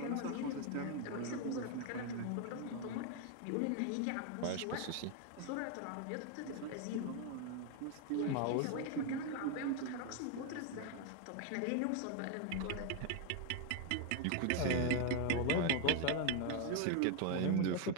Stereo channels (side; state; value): both; different; correlation 0.01